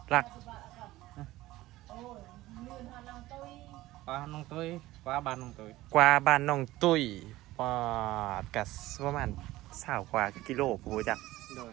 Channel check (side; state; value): left; quieter; 17.1 dB